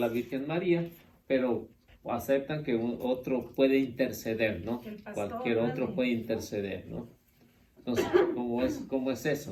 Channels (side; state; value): both; identical; correlation 1.00